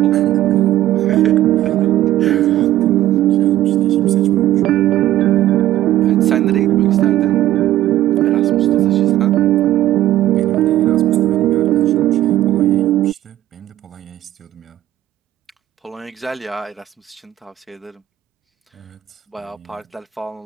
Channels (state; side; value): quieter; left; 13.8 dB